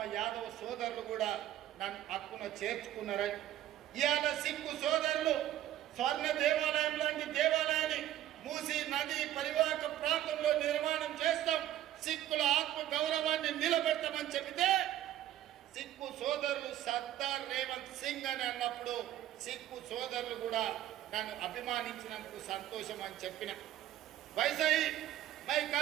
యాదవ్ సోదరులు కూడా నన్ను హక్కున చేర్చుకున్నారని. ఇవాళ సిక్కు సోదరులు స్వర్ణ దేవాలయం లాంటి దేవాలయాన్ని మూసీ నది పరివాహక ప్రాంతంలో నిర్మాణం చేస్తాం, సిక్కుల ఆత్మ గౌరవాన్ని నిలబెడతామని చెబితే సిక్కు సోదరులు సర్దార్ రేవంత్ సింగ్ అని అన్నప్పుడు సిక్కు సోదరులు కూడా నన్ను అభిమానించినందుకు సంతోషం అని చెప్పిన. वैसे ही मैं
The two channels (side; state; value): left; quieter; 12.7 dB